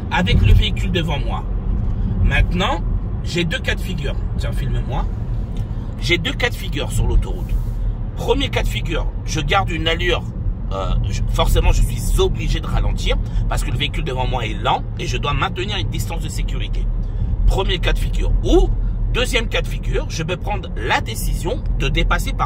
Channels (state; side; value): identical; both; correlation 1.00